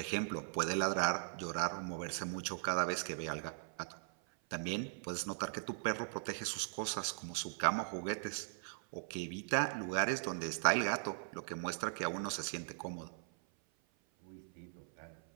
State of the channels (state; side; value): silent; left; 52 dB below the other